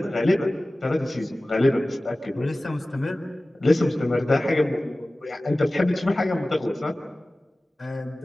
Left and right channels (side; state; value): both; normal; correlation 0.97